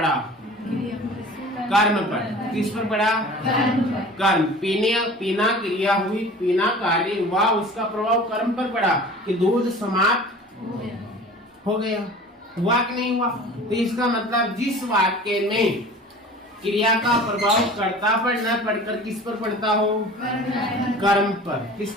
कर्म पर। किस पर पड़ा? कर्म। पीना क्रिया हुई, पीना कार्य हुआ, उसका प्रभाव कर्म पर पड़ा कि दूध समाप्त हो गया। हुआ कि नहीं हुआ? तो इसका मतलब जिस वाक्य में क्रिया का प्रभाव कर्ता पर न पड़कर किस पर पड़ता हो? कर्म पर। किस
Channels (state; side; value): normal; both; correlation 0.42